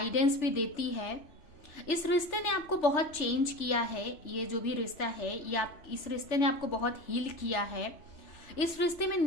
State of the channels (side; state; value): right; late; 3.4 ms